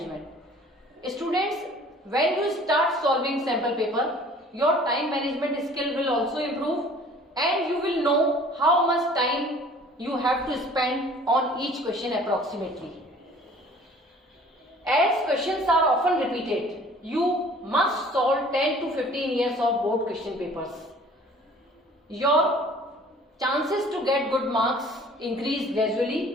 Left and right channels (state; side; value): normal; both; correlation 0.50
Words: Students, when you start solving sample paper, your time management skill will also improve and you will know how much time you have to spend on each question approximately. As questions are often repeated, you must solve 10 to 15 years of board question papers. Your chances to get good marks increase